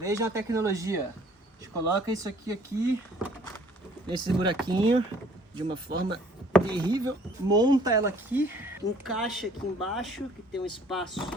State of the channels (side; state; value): both; normal; correlation 0.56